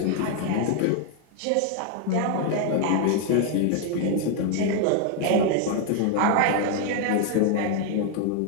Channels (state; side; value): different; both; correlation 0.01